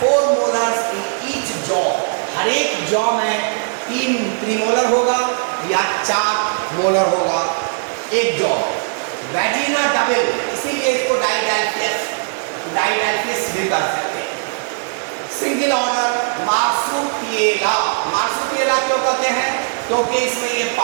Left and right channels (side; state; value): left; silent; digital silence